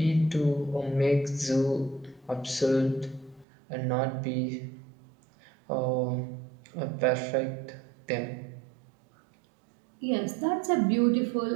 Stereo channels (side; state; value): left; drops out; at 3.5 s